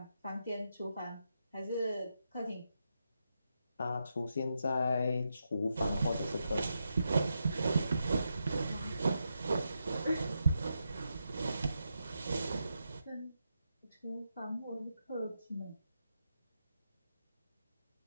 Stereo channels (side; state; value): both; inverted; correlation -0.85